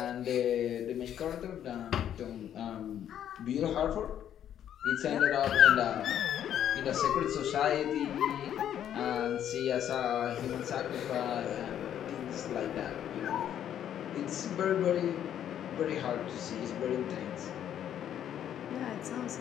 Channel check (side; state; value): right; quieter; 10.2 dB